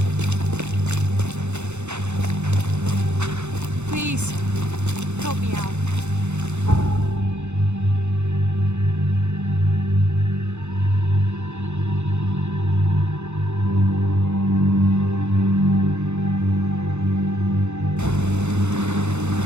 Please, help me out.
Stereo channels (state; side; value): late; left; 0.82 ms